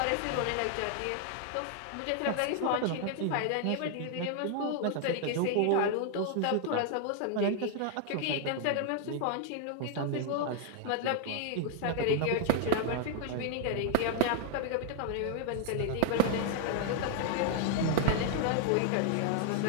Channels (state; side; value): different; both; correlation 0.00